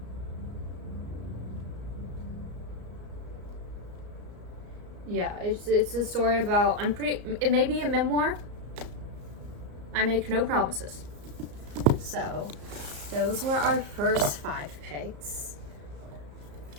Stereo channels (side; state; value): left; late; 34 ms